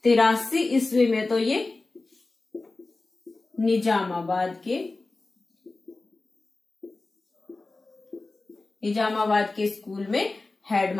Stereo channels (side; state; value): right; quieter; 3.3 dB